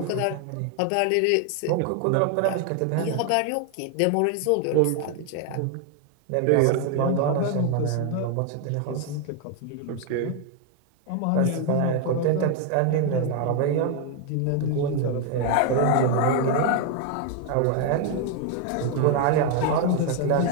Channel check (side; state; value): both; different; correlation 0.00